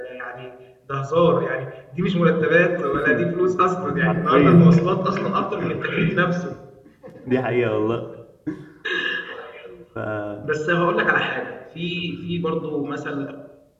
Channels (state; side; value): identical; both; correlation 1.00